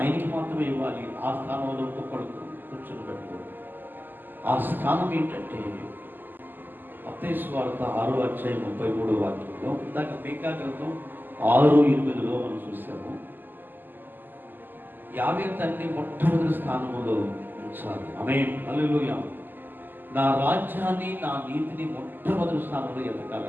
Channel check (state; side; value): late; left; 0.090 ms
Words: మాత్రమే ఇవ్వాలి. ఆ స్థానంలో ఒక్కొక్కడు కూర్చొని పెట్టుకోవాలి. ఆ స్థానం ఏంటంటే మత్తయి సువార్త 6వ అధ్యాయం 33వ వాక్యంలో, ఇందాక మేకా గ్రంథం 6:8లో మనం చూసాము. యావే తండ్రి మొట్టమొదటి స్థానంలో ఉంచాలి. ఆమేన్, హల్లెలూయా. నా రాజ్యాన్ని, నా నీతిని మొట్టమొదటి స్థానంలో